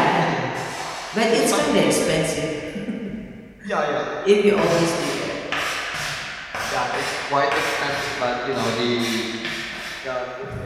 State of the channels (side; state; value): both; identical; correlation 1.00